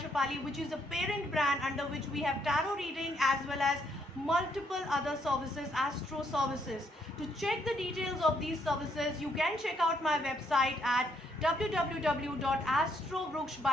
which is a parent brand under which we have tarot reading as well as multiple other services, astro services. To check the details of these services, you can check out my website at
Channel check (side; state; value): both; normal; correlation 0.72